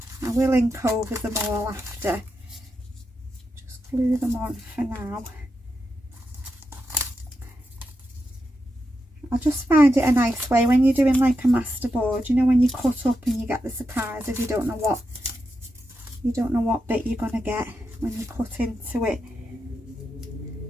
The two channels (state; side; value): normal; both; correlation 0.86